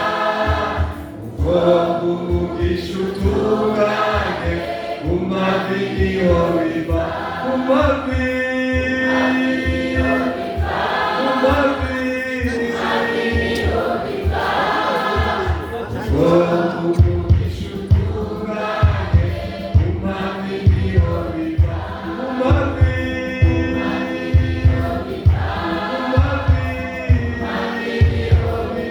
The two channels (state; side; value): identical; both; correlation 1.00